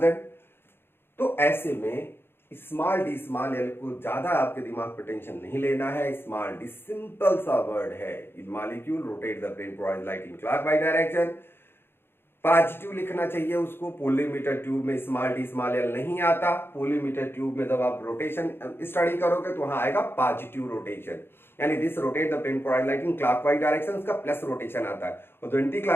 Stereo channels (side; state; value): right; late; 0.11 ms